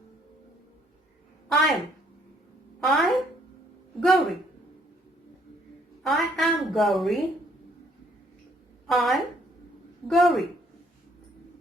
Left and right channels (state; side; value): normal; both; correlation 0.66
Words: I'm Gauri. I am Gauri. I'm Gauri.